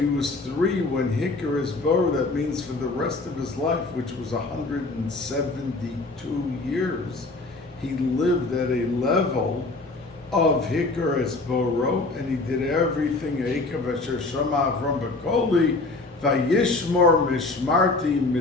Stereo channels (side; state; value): right; quieter; 3.3 dB